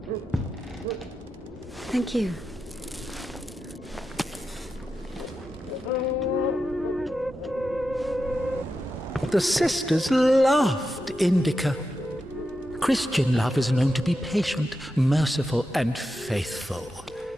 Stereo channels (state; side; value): noise; left; hum, 28 dB below the sound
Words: Thank you. The sisters loved Indika. Christian love is known to be patient, merciful, and faithful.